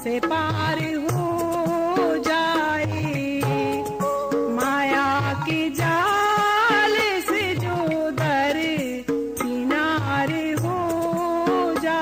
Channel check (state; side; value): noise; left; hum, 26 dB below the sound